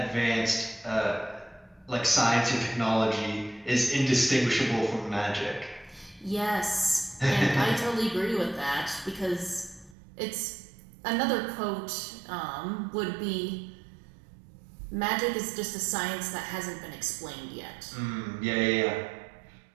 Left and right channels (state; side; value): drops out; left; at 10.0 s